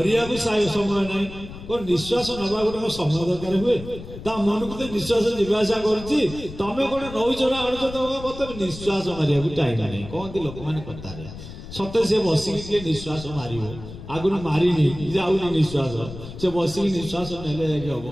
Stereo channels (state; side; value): noise; left; rumble, 13 dB below the sound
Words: को समय ना को निश्वास नवा गोटे समय दरकार हुए ता मन को निश्वास जीवासा करछि तमे कोन नौचरा आणछ तो मत निश्वास मारिया को टाइम नहीं कहती लोक माने कथा रे सत्य से बसिक निश्वास मारिबो आगुन मारिनी जाऊनी निश्वास से बसिक निश्वास नेले जाके हम